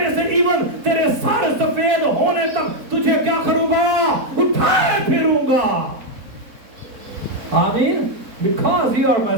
से, इवन तेरे सर सफेद होने तक तुझे क्या करूंगा? उठाए फिरूंगा। आमीन। Because you are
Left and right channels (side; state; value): left; late; 4.0 ms